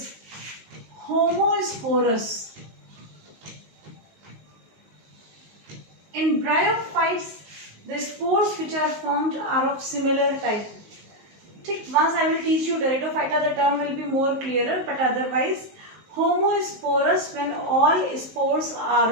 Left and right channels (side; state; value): left; late; 19 ms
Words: homosporous. In bryophytes, the spores which are formed are of similar type. Once I will teach you pteridophyta, the term will be more clearer, but otherwise homosporous when all spores are